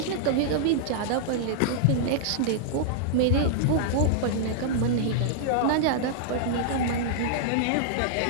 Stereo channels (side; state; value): both; different; correlation -0.01